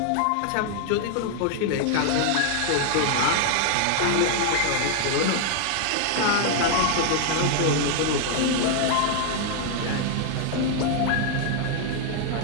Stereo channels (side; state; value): both; different; correlation 0.00